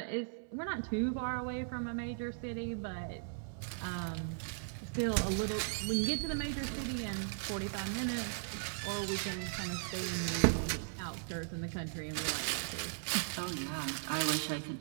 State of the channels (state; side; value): silent; left; 53 dB below the other